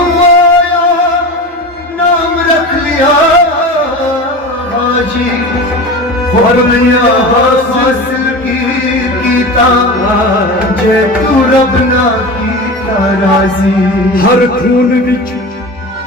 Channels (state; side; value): normal; both; correlation 0.30